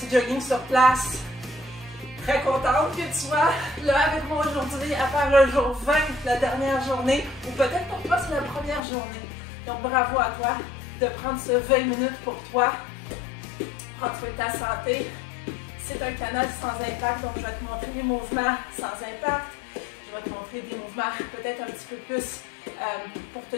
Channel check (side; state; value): right; drops out; at 8.8 s